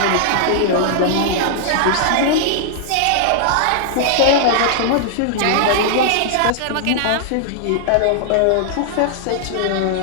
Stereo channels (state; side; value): different; both; correlation -0.01